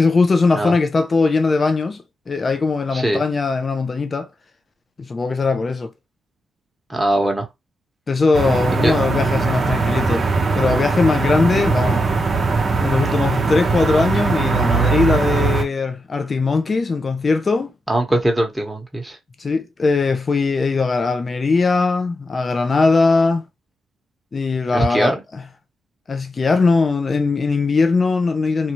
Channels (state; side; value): normal; both; correlation 0.87